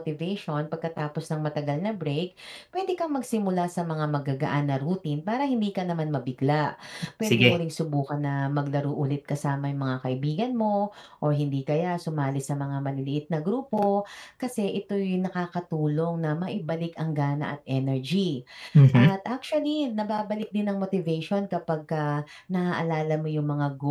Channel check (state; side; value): identical; both; correlation 1.00